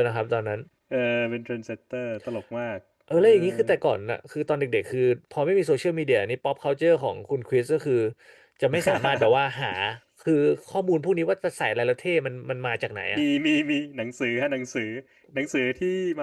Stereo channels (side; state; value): both; identical; correlation 1.00